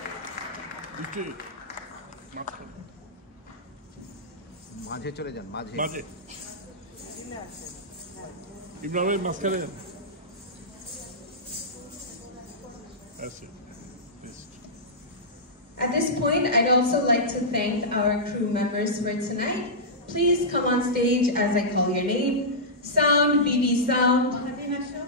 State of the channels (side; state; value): both; normal; correlation -0.13